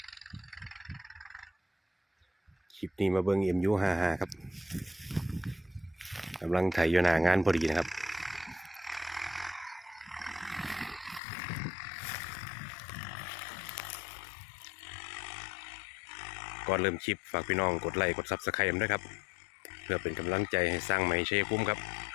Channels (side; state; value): right; drops out; at 11.2 s